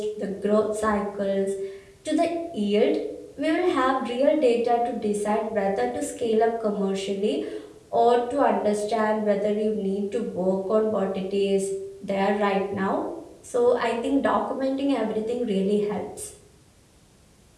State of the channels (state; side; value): identical; both; correlation 1.00